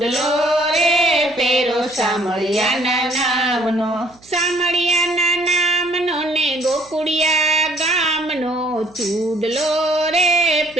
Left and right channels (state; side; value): noise; right; hum, 29 dB below the sound